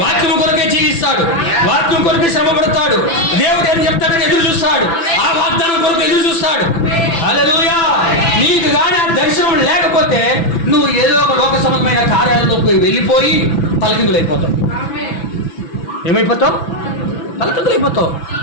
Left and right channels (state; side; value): late; right; 6.0 ms